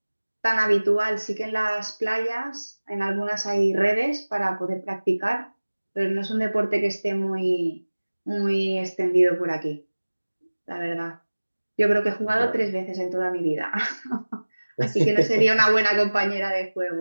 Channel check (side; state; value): both; inverted; correlation -1.00